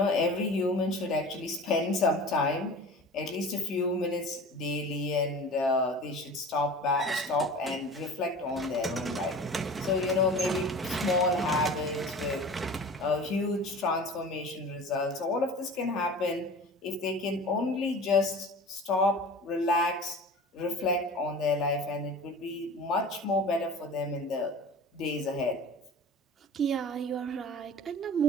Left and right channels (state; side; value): normal; both; correlation 0.38